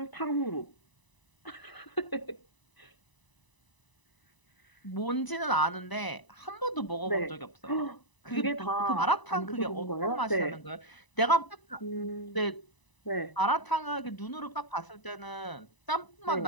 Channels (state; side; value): late; right; 1.0 ms